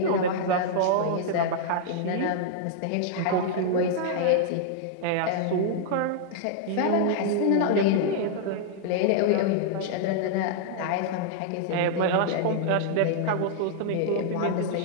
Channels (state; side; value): different; both; correlation -0.01